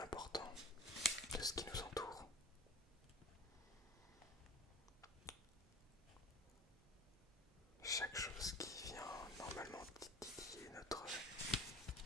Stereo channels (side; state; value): both; normal; correlation 0.39